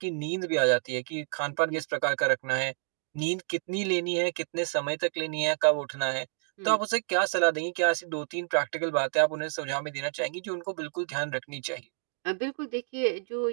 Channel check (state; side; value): silent; left; digital silence